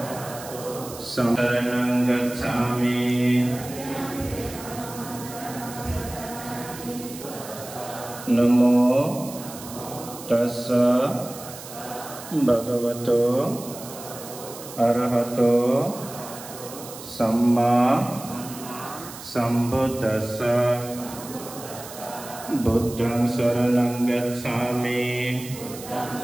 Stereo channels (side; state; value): right; noise; hiss, 14 dB below the sound